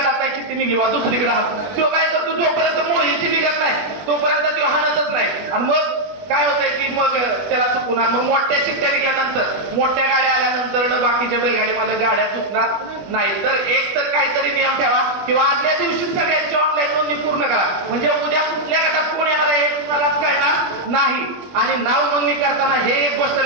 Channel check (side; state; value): left; late; 21 ms